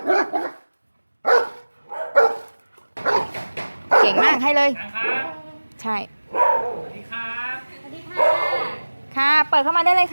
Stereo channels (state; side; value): inverted; both; correlation -1.00